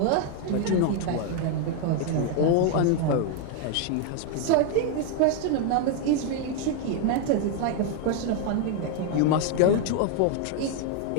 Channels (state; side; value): different; both; correlation 0.00